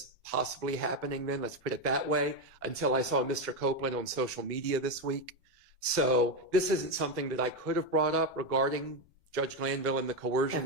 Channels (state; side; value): normal; both; correlation 0.09